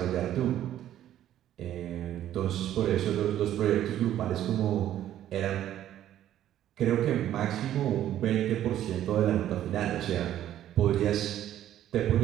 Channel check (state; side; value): quieter; left; 11.9 dB